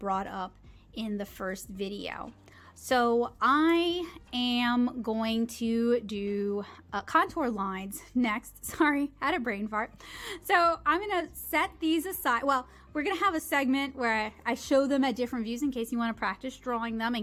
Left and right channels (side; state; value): both; identical; correlation 1.00